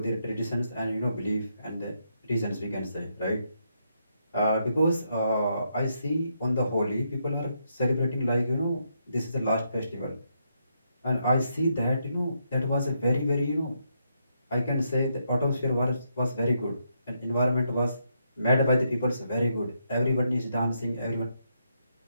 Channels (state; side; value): inverted; both; correlation -0.78